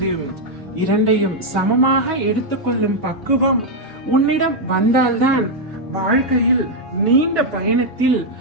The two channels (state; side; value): normal; both; correlation -0.01